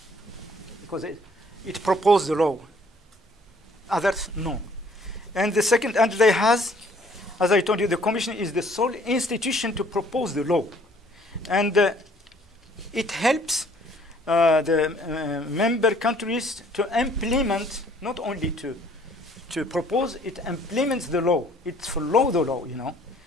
because it proposed the law. Others, no. And the second, and they has, as I told you, the Commission is the sole institution to propose the law. And it helps the member countries to implement, not only to propose, it implements the law. It follows the law, you know.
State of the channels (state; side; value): normal; both; correlation 0.59